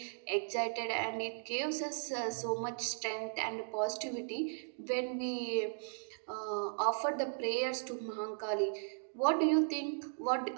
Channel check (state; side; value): silent; left; digital silence